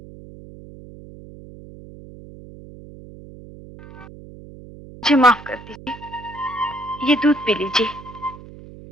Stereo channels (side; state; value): right; noise; hum, 17 dB below the sound